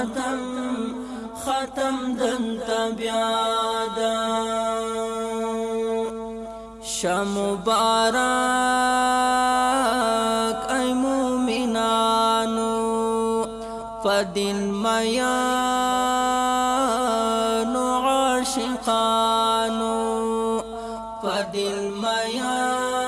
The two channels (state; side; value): identical; both; correlation 1.00